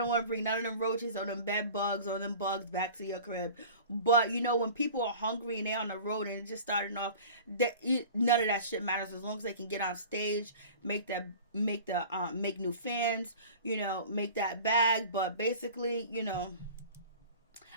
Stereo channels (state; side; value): inverted; both; correlation -0.40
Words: want to bring none of them roaches or them bed bugs or them bugs back to your crib. But, when people are hungry and they're on the road and it's just starting off, none of that shit matters as long as they can get on stage, make new fans, make that bag. But basically,